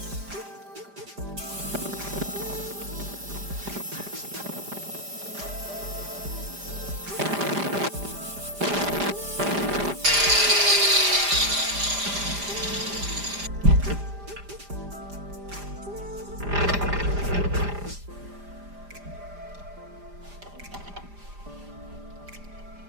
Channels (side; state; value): left; late; 5.0 ms